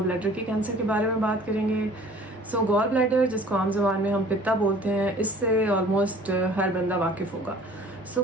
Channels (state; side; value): normal; both; correlation 0.50